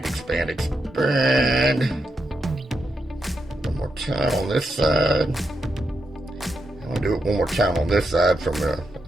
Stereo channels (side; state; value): both; normal; correlation 0.84